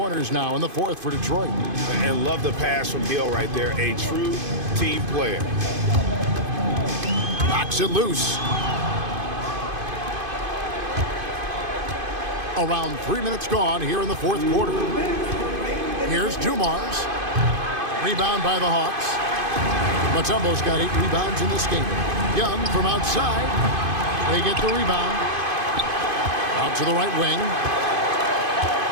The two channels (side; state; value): left; late; 2.5 ms